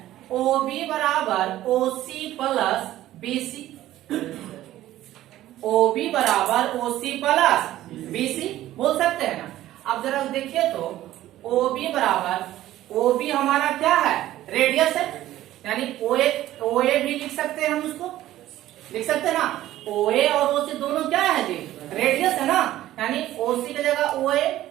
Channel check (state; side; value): quieter; left; 14.2 dB